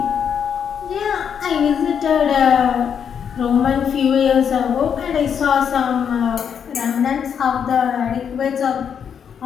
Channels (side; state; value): right; quieter; 7.7 dB